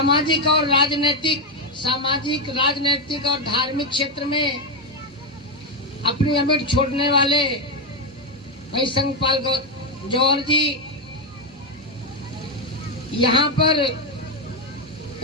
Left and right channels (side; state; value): both; normal; correlation 0.05